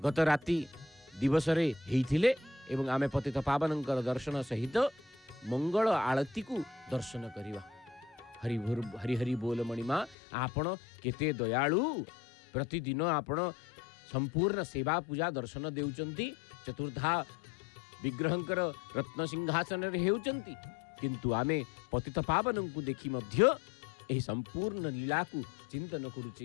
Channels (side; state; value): right; drops out; at 10.2 s